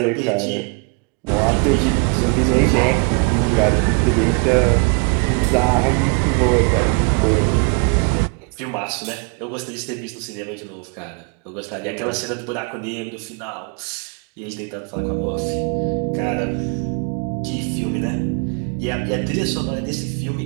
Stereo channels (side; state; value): left; quieter; 35.0 dB